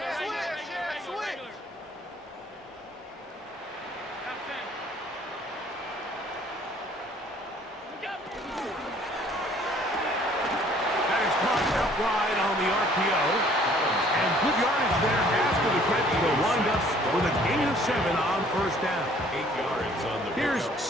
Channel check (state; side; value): normal; both; correlation 0.57